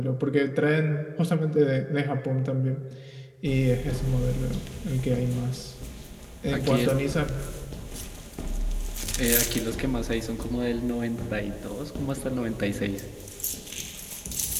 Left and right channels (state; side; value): identical; both; correlation 1.00